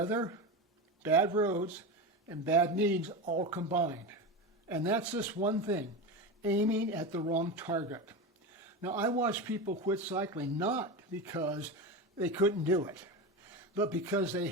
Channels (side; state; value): both; normal; correlation 0.21